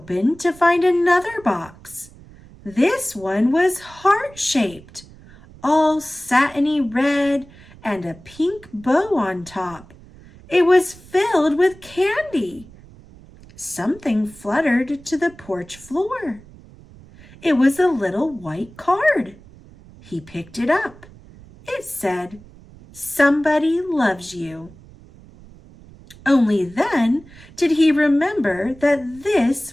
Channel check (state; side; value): noise; right; rumble, 22 dB below the sound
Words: to find another box. This one was heart-shaped, all satiny red and a pink bow on top. It was filled with candy. Something fluttered to the porch floor. It was a little white card. He picked it up. It said, "Somebody loves you." Only then did he remember that